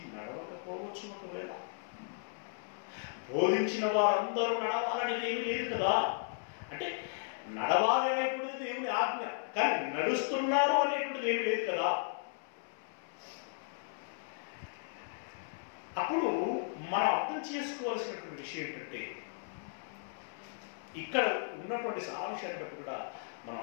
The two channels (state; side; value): silent; right; 54 dB below the other